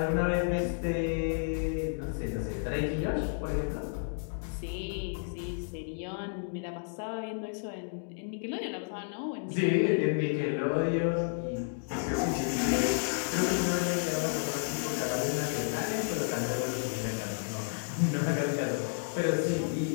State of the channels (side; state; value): right; silent; digital silence